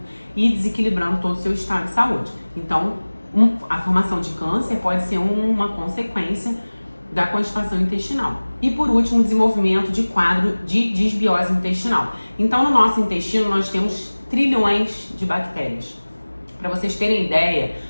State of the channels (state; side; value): inverted; both; correlation -1.00